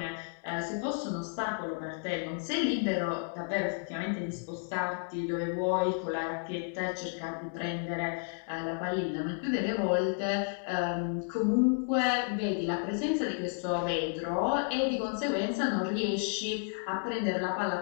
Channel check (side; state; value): right; silent; 56 dB below the other